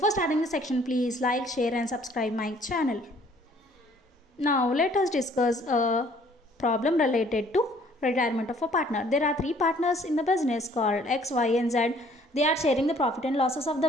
starting the section, please like, share and subscribe my channel. Now let us discuss a problem related to retirement of a partner. There are three partners in the business called X, Y and Z. They are sharing the profit and losses of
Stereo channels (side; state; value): both; normal; correlation 0.59